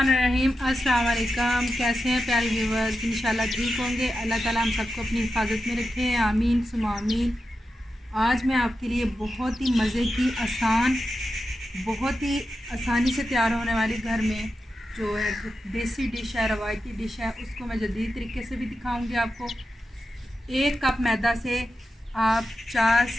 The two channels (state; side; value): normal; both; correlation 0.90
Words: अस्सलाम वालेकुम। कैसे हैं प्यारे व्यूवर्स? इंशाल्लाह ठीक होंगे। अल्लाह ताला हम सबको अपनी हिफाजत में रखे। आमीन सुमा आमीन। आज मैं आपके लिए बहुत ही मज़े की बहुत ही आसानी से तैयार होने वाली घर में जो है देसी डिश है, रवायती डिश है, उसको मैं जदीद तरीके से भी दिखाऊंगी आपको। 1 कप मैदा से आप 4